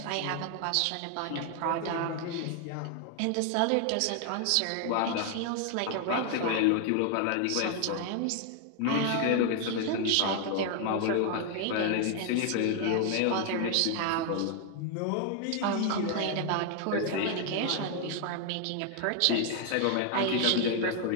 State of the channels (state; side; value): different; both; correlation 0.00